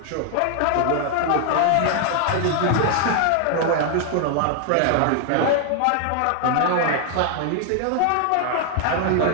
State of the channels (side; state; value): both; different; correlation 0.00